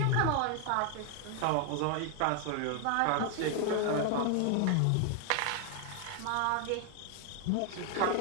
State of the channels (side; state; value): both; different; correlation 0.00